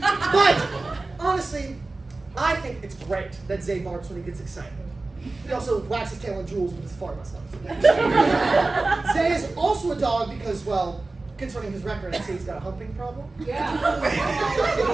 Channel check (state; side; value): quieter; left; 3.3 dB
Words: But honestly, I think it's great that Zay barks when he gets excited. He also wags his tail on jewels, but it's far less noticeable. Zay is also a dog because, well, concerning his record, I'd say he's got a humping problem. Yeah.